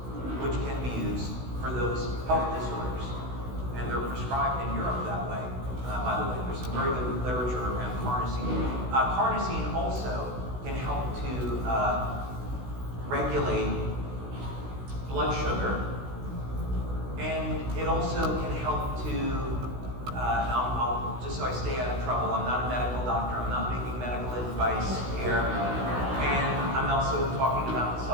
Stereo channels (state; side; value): late; left; 16 ms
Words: which can be used for those health disorders. And they're prescribed in Europe that way. By the way, there's some very good literature around carnosine. Carnosine also can help to regulate blood sugar, and it also can help to, I'll just so I stay out of trouble, I'm not a medical doctor, I'm not making medical advice here, and I'm also talking about the